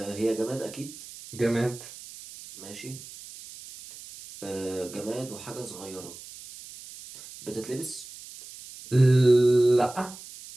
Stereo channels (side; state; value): right; noise; hiss, 16 dB below the sound